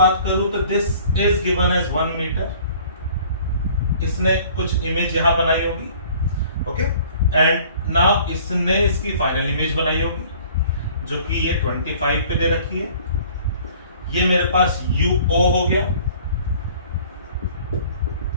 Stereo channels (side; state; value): both; inverted; correlation -0.51